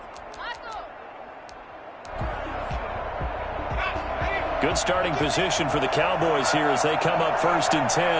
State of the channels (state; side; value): identical; both; correlation 1.00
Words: Good starting position for the Cowboys here as they come up 1st and